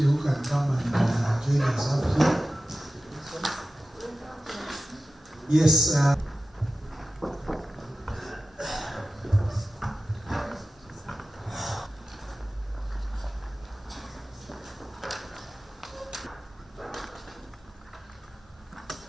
who can come and join us up here. Yes.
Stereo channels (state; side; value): normal; both; correlation 0.94